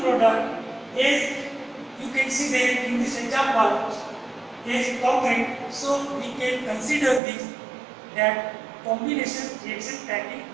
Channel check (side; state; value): left; drops out; at 7.2 s